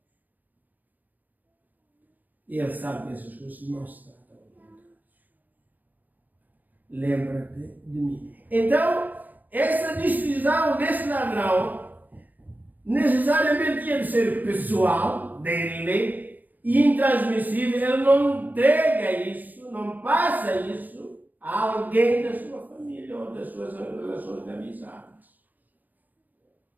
Ele sabe que essas coisas não se tratam ao altar. Lembra-te de mim. Então, essa decisão desse ladrão necessariamente tinha de ser pessoal, dele, e intransmissível. Ele não entrega isso, não passa isso a alguém da sua família ou das suas relações de amizade.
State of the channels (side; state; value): left; late; 0.086 ms